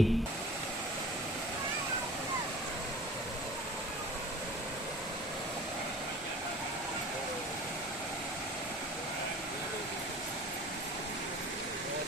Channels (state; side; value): normal; both; correlation 0.42